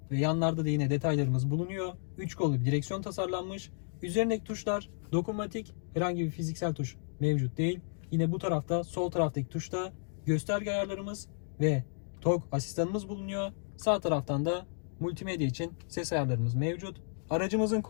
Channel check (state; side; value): silent; right; digital silence